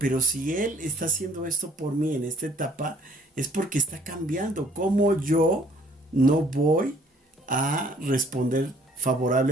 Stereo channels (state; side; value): normal; both; correlation 0.60